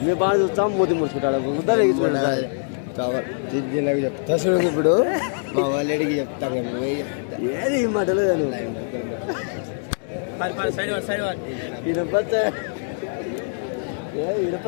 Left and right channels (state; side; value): silent; right; digital silence